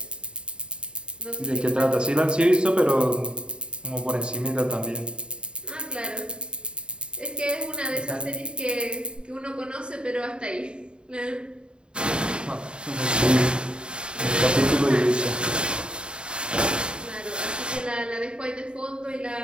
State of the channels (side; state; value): left; late; 0.051 ms